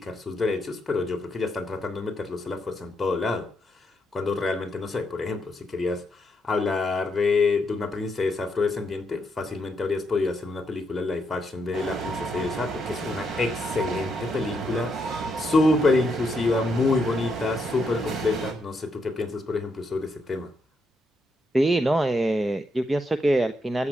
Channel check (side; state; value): both; normal; correlation 0.79